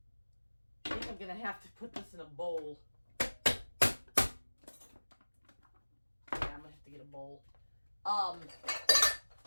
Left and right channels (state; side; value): inverted; both; correlation -1.00